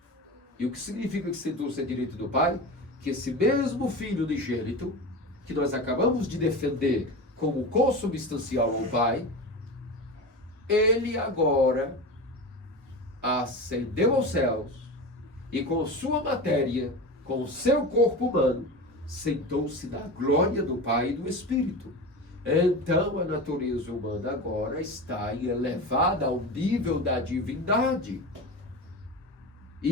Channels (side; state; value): both; normal; correlation 0.27